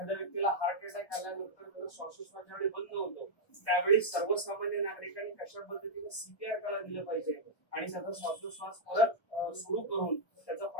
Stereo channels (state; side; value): late; right; 1.1 ms